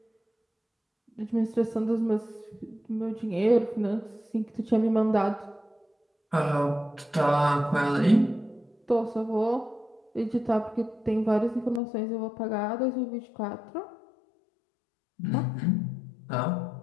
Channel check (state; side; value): drops out; right; at 11.8 s